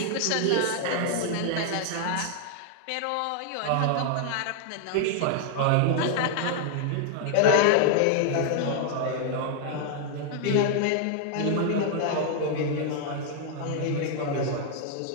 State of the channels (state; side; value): different; both; correlation 0.00